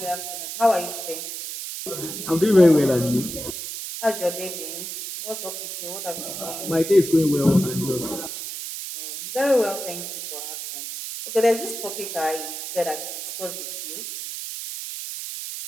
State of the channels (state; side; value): noise; right; hiss, 7 dB below the sound